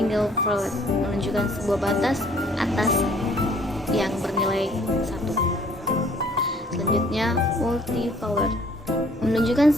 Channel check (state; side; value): normal; both; correlation 0.59